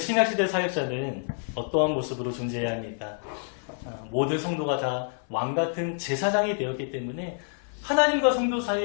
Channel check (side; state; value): right; silent; 55 dB below the other